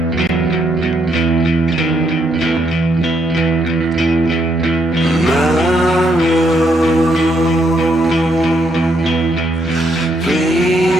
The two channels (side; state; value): both; normal; correlation 0.75